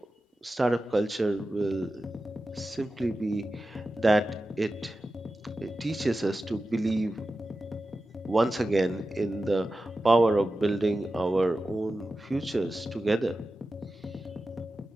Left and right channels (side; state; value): both; normal; correlation 0.93